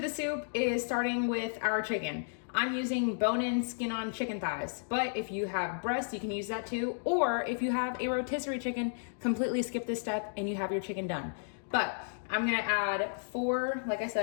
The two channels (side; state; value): right; silent; digital silence